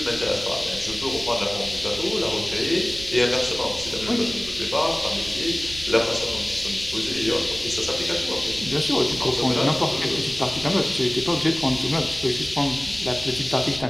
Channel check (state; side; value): noise; right; rumble, 17 dB below the sound